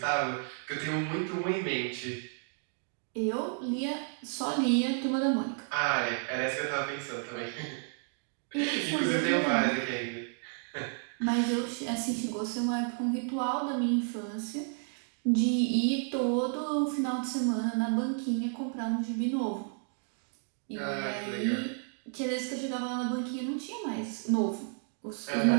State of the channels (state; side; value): silent; left; 57 dB below the other